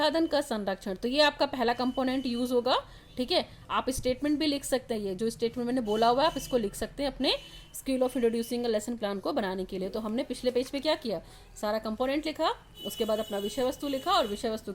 का संरक्षण. तो ये आपका पहला कंपोनेंट यूज होगा. ठीक है. आप स्टेटमेंट भी लिख सकते हैं. ये जो स्टेटमेंट मैंने बोला हुआ है आप इसको लिख सकते हैं अपने skill of introducing lesson plan को बनाने के लिए. तो हमने पिछले पेज पे क्या किया, सारा कंपोनेंट लिखा, उसके बाद अपना विषय वस्तु लिखा और विषय वस्तु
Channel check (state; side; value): identical; both; correlation 1.00